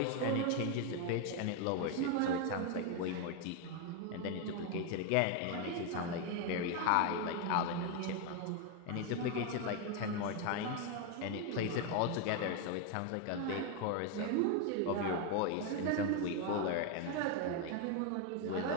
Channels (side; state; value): both; different; correlation 0.01